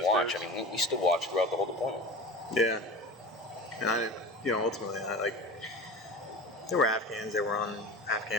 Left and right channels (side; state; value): both; normal; correlation 0.33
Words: watch. dudes? I mean, we still watched throughout the whole deployment. Yeah. And ultimately, there were Afghans that were on,